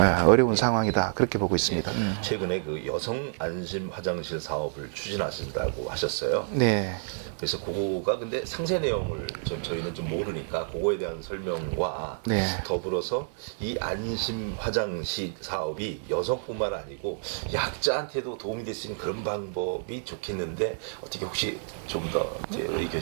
어려운 상황이다. 그렇게 보고 있습니다. 최근에 그 여성 안심 화장실 사업을 추진하신다고 하셨어요. 네. 그래서 그거가 근데 상세 내용을 저희는 좀 모르니까 그거에 대한 설명과 네. 더불어서 이 안심 화장실 사업이 여성뿐만 아니고 약자한테도 도움이 될 수 있는 그런 방법이 좋겠는데 어떻게 혹시 좀 더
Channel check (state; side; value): silent; left; digital silence